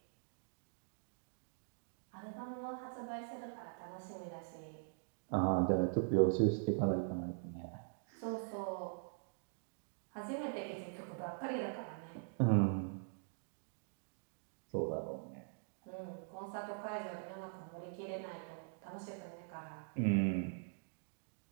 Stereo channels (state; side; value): silent; left; digital silence